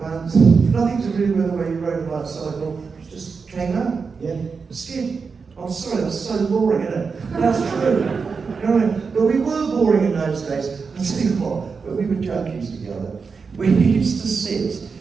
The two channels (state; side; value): quieter; left; 5.1 dB